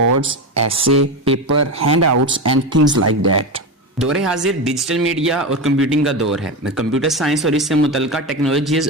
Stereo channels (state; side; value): normal; both; correlation 0.18